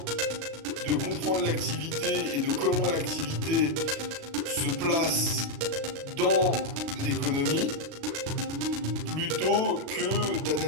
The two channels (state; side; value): late; left; 36 ms